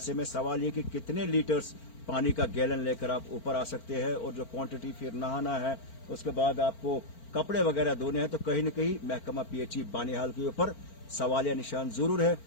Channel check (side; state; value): right; late; 4.4 ms